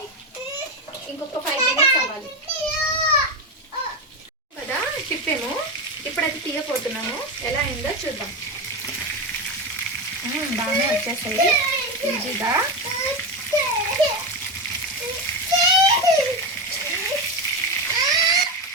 ఇంకొక 5 minutes అవ్వాలి కదా. తిప్పాము, ఇప్పుడు అది తీయపోతున్నాము. ఎలా అయిందో చూద్దాం. బాగానే వచ్చేస్తాయి ఈజీగా.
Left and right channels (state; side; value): normal; both; correlation 0.15